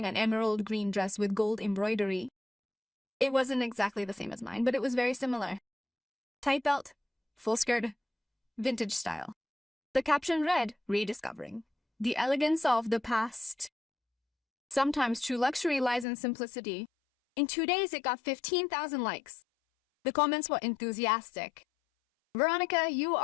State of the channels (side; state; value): right; drops out; at 16.1 s